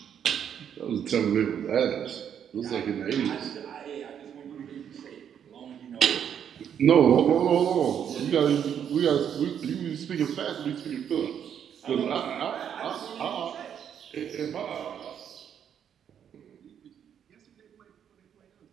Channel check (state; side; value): quieter; left; 8.7 dB